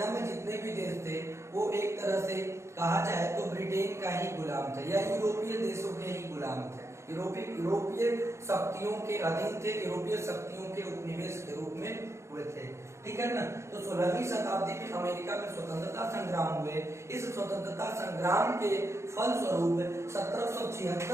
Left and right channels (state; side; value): late; left; 0.14 ms